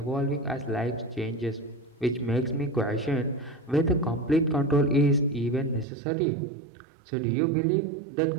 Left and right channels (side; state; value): left; drops out; at 5.9 s